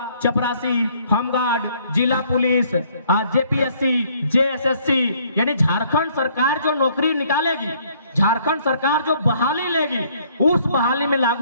चपरासी, होमगार्ड, जिला पुलिस, जेपीएससी, जेएसएससी, यानी झारखंड सरकार जो नौकरी निकालेगी, झारखंड सरकार जो बहाली लेगी, उस बहाली में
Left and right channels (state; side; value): inverted; both; correlation -0.63